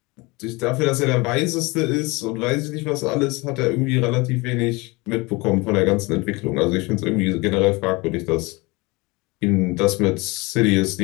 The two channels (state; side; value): quieter; right; 24.9 dB